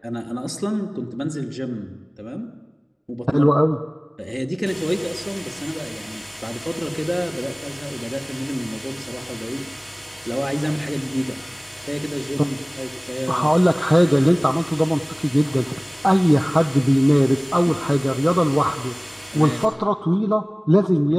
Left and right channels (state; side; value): identical; both; correlation 1.00